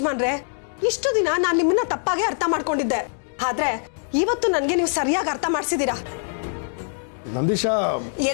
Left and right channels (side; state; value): right; silent; digital silence